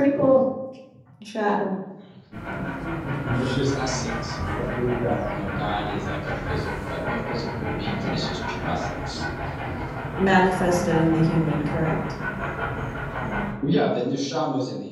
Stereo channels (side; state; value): both; identical; correlation 1.00